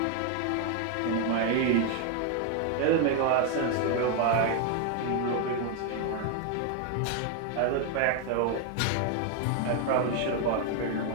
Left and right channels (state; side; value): different; both; correlation 0.01